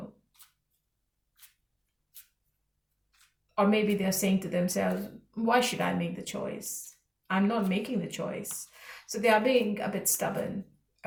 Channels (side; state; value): both; identical; correlation 1.00